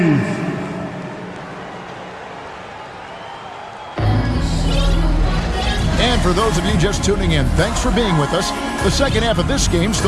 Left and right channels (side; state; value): both; identical; correlation 1.00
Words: And for those of you just tuning in, thanks for being with us. The second half of this game